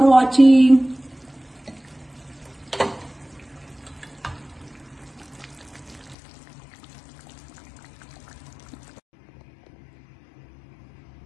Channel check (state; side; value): drops out; right; at 6.2 s